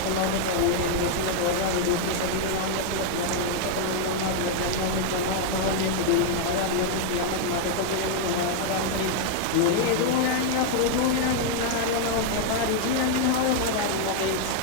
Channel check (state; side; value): different; both; correlation 0.00